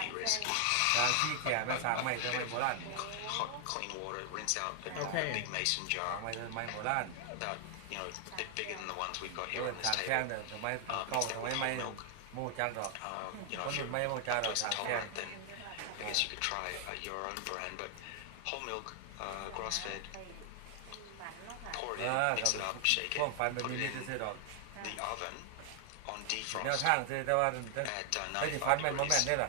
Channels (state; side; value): different; both; correlation 0.00